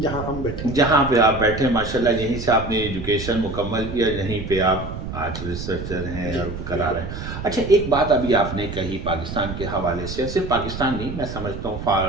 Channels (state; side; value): noise; right; rumble, 8 dB below the sound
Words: जहाँ हम बैठे, जहाँ पे आप बैठे माशाल्लाह, यहीं से आपने एजुकेशन मुकम्मल किया, यहीं पे आप आज रिसर्चर हैं और करा रहे हैं। अच्छा, एक बात अभी आपने कही पाकिस्तान के हवाले से, सिर्फ पाकिस्तान नहीं, मैं समझता हूँ